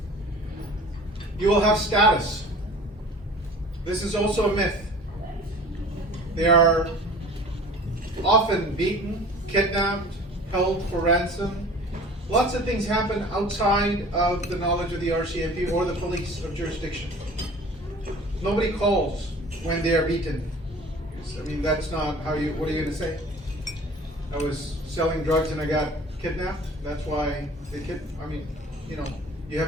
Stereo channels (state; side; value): normal; both; correlation 0.45